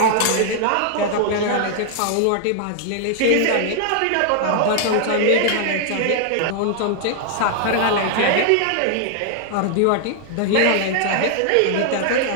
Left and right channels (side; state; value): both; different; correlation 0.00